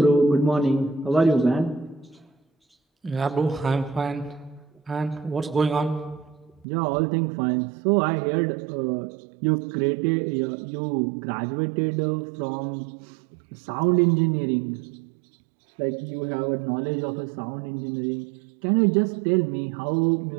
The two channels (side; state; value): left; drops out; at 6.7 s